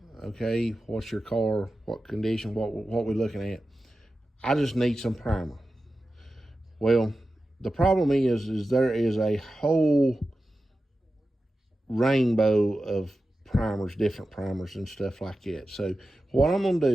Okay, what's your car, what condition, what we looking at? I just need some primer. Well, the problem is there is a whole rainbow of primers, different primers and stuff like that. So what I'm going to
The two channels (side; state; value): both; normal; correlation 0.93